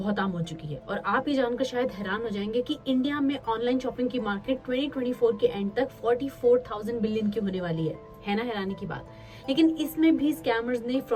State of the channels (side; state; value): both; identical; correlation 1.00